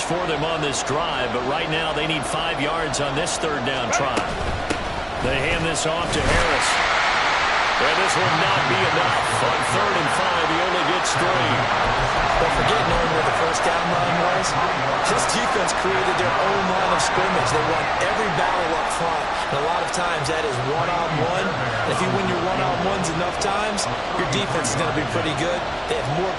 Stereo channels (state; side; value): identical; both; correlation 1.00